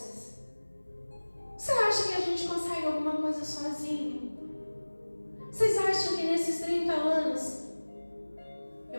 Você acha que a gente consegue alguma coisa sozinho? Vocês acham que nesses 30 anos,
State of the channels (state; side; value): inverted; both; correlation -1.00